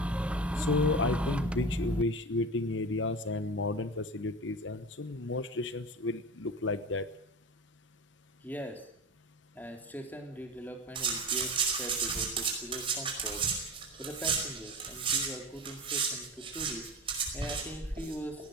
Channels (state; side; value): normal; both; correlation 0.29